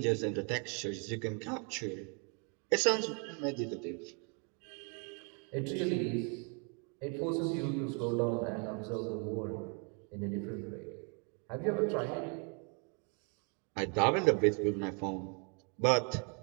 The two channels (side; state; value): left; quieter; 36.8 dB